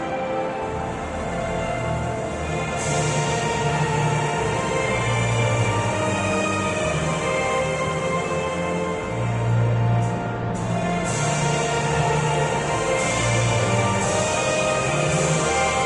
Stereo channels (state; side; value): identical; both; correlation 1.00